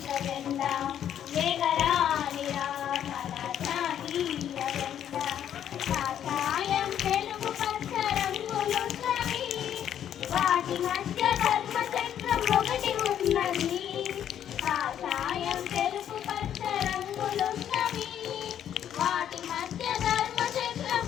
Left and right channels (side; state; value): right; quieter; 10.0 dB